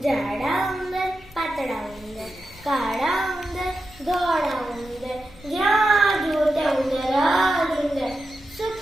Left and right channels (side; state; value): left; noise; rumble, 23 dB below the sound